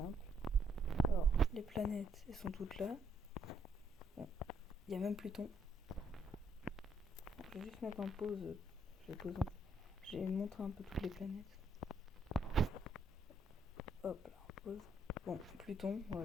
Alors, les planètes, elles sont toutes là. Bon, il y a même Pluton. Je vais juste mettre en pause. Je vais montrer un peu toutes les planètes. Hop là, en pause. Bon, Pluton,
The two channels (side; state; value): both; normal; correlation 0.71